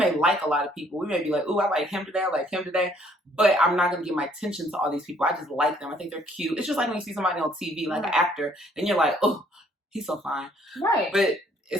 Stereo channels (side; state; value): both; normal; correlation 0.63